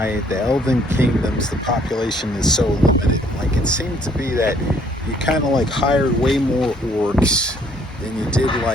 the Elven Kingdoms, the population is so limited. Like, it seemed to be that you kind of like hired way more orcs than you did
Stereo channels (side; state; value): both; normal; correlation 0.63